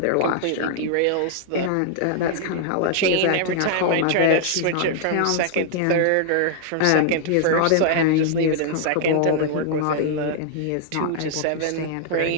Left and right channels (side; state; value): both; different; correlation -0.01